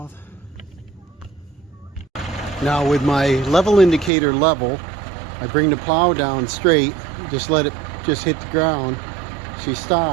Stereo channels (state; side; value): drops out; left; at 4.1 s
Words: Now with my level indicator level, I bring the plow down straight. Just let it just hit the ground. She